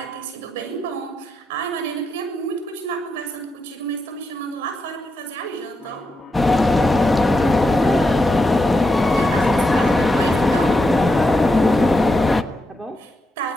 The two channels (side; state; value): both; normal; correlation 0.85